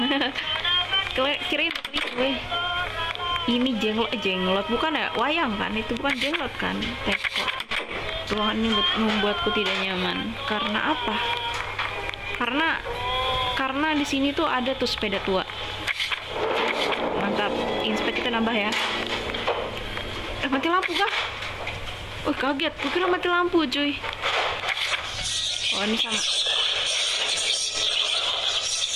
Kirain bakal hilang. Ini jenglot bukan ya? Wayang kan? Itu bukan jenglot kan? Teko. Ruangan ini membuatku tidak nyaman. Karena apa? Karena di sini tuh ada tuh sepeda tua. Mantap. Inspek kita nambah ya. Mati lampu kah? Kaget. Gue kira mati lampu cuy. Oh, ini sama.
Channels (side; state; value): both; identical; correlation 1.00